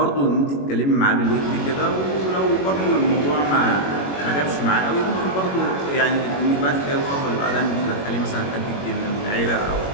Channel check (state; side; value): late; right; 21 ms